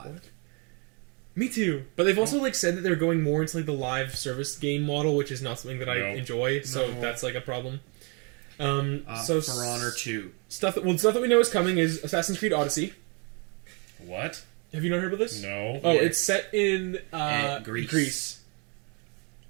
what? Me too. But they've also like said that they're going more into like the live service game model, which is not something that I Nope. enjoy. So No. that's like a problem. So For Honor 2. stuff that we know is coming is Assassin's Creed Odyssey. What? Have you not heard about this? No. Oh, Yeah. it's set in Greece.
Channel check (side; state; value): left; quieter; 33.5 dB